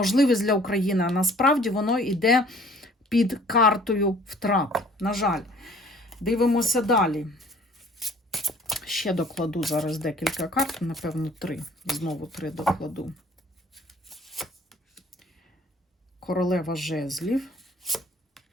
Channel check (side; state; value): both; normal; correlation 0.54